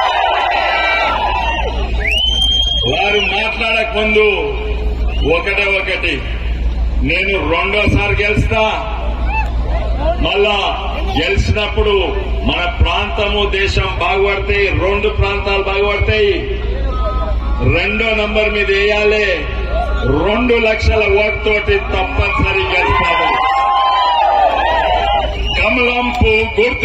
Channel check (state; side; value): identical; both; correlation 1.00